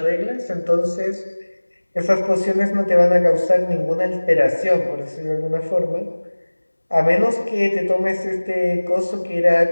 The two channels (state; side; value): inverted; both; correlation -1.00